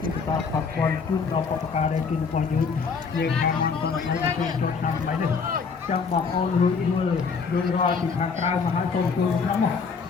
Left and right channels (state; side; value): quieter; right; 5.3 dB